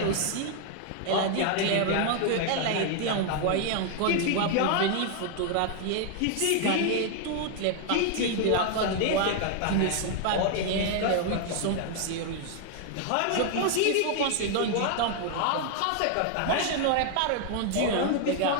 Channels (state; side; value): different; both; correlation 0.00